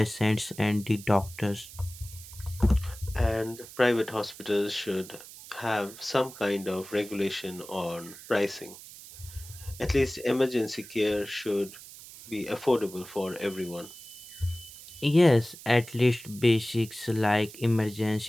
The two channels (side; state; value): right; noise; hiss, 16 dB below the sound